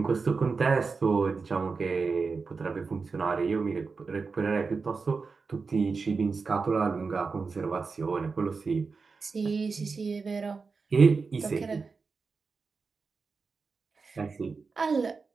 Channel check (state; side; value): quieter; left; 4.6 dB